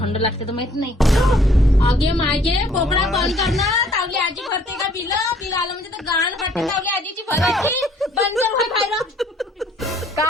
लागते तर माहित नाही. आगे मागे पोपडा बंद करणं. तावली आजी भरते का बिल आलं म्हणजे तर गाण फाटते. तावली आजीची भरायची बंद कर खायला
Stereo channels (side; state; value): both; normal; correlation 0.60